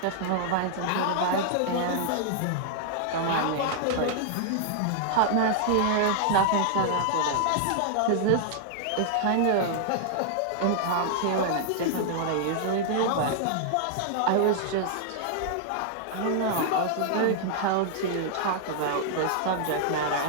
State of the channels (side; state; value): both; different; correlation -0.01